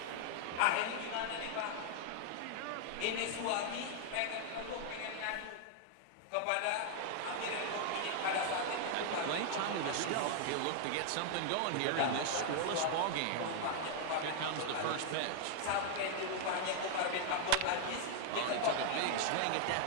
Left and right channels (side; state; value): both; different; correlation 0.00